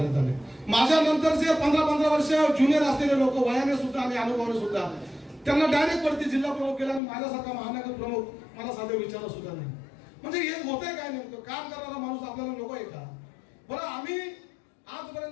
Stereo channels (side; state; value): right; drops out; at 7.0 s